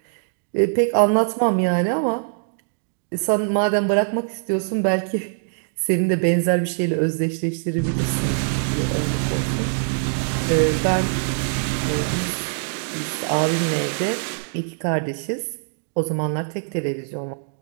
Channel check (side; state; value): left; silent; digital silence